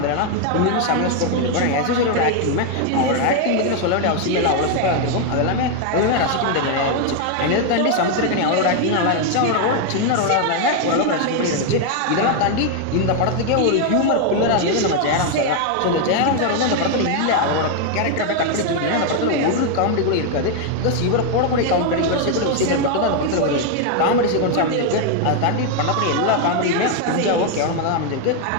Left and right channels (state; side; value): different; both; correlation 0.01